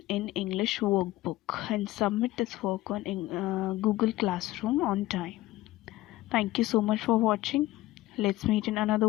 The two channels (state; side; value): quieter; right; 16.7 dB